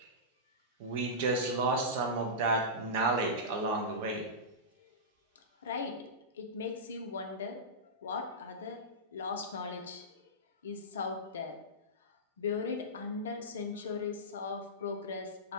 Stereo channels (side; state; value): both; normal; correlation -0.16